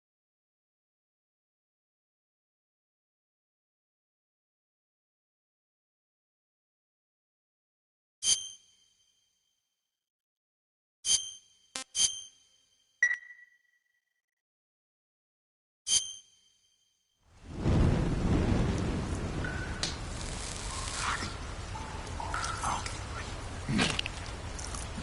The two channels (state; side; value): identical; both; correlation 1.00